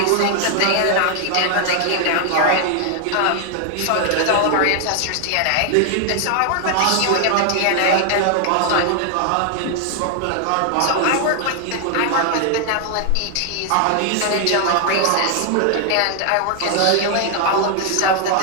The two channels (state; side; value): different; both; correlation 0.00